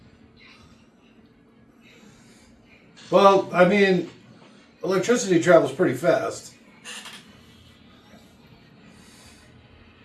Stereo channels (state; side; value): identical; both; correlation 1.00